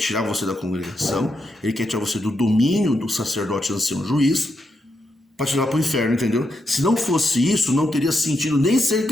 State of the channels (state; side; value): normal; both; correlation 0.83